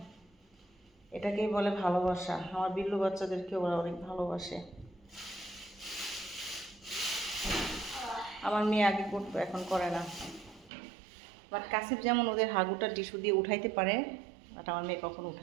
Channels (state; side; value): drops out; left; at 10.7 s